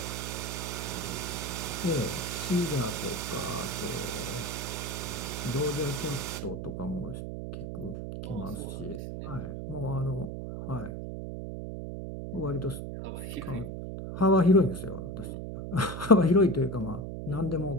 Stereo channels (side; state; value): right; noise; hum, 6 dB below the sound